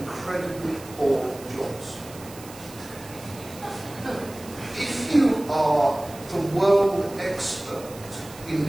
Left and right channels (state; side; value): noise; right; hiss, 18 dB below the sound